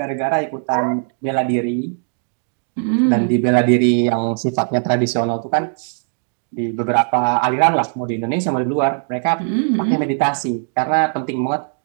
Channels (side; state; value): left; silent; digital silence